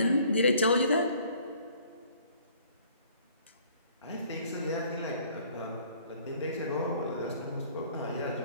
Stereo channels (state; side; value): inverted; both; correlation -0.57